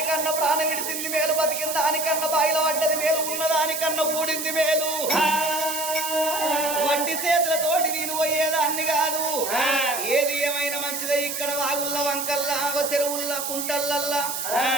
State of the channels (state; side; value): noise; right; hiss, 4 dB below the sound